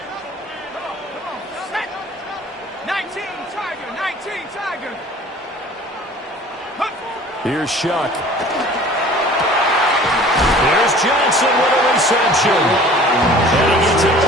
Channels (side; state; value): both; normal; correlation 0.47